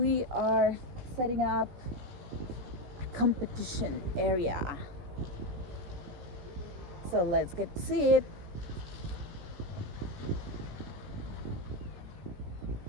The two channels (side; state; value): left; late; 17 ms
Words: are setting up a competition area. So let's get to see it.